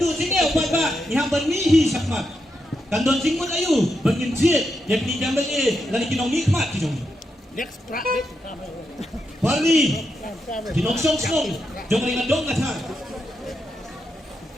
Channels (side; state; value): both; normal; correlation 0.84